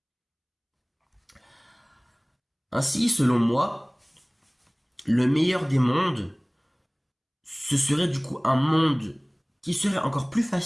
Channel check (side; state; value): both; identical; correlation 1.00